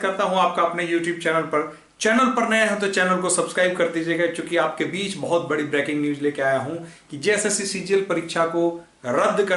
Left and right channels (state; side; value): identical; both; correlation 1.00